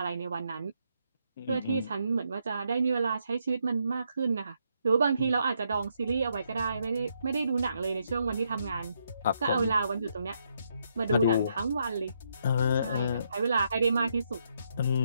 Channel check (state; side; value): inverted; both; correlation -0.77